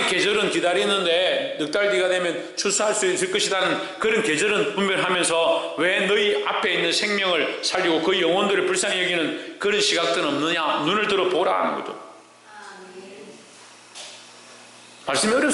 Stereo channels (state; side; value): identical; both; correlation 1.00